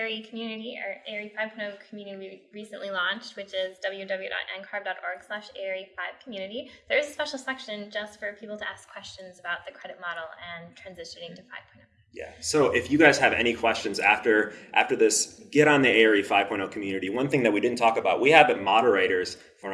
community, or ARE 5.0 community we recently launched, which is www.ncarb.org/ARE5community, there is a special section just for people to ask questions about the credit model and transitioning to 5.0. Yeah, so if you guys have any questions after this, get on the ARE 5.0 community. One thing that we didn't talk about, we have moderators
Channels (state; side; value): identical; both; correlation 1.00